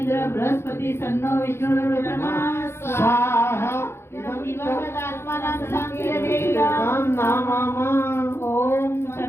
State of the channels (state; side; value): late; right; 0.12 ms